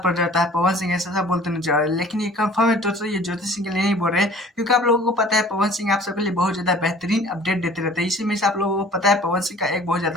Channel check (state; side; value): normal; both; correlation 0.49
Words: पड़ जाता है। पवन सिंह ऐसा बोलते नजर आ रहे हैं, लेकिन ये कंफर्म है तो ये ज्योति सिंह के लिए नहीं बोल रहे, क्योंकि आप लोगों को पता है पवन सिंह आप सबके लिए बहुत ज्यादा बेहतरीन अपडेट देते रहते हैं। इसी में से आप लोगों को पता है पवन सिंह का एक बहुत